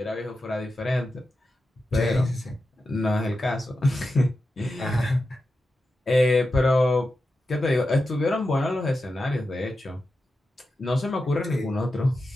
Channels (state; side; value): normal; both; correlation 0.91